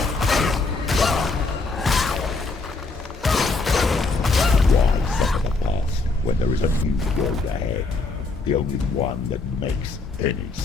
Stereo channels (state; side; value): quieter; right; 3.7 dB